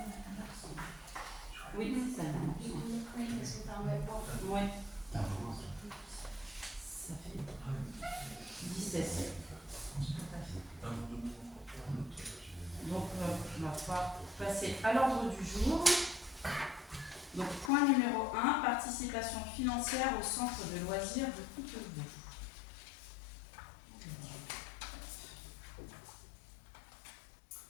Oui, c'est ça. Oui. Ça fait 17. passer à l'ordre du jour. Donc, point numéro 1, participation financière au centre de loisirs de Coutevaux.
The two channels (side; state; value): right; drops out; at 17.7 s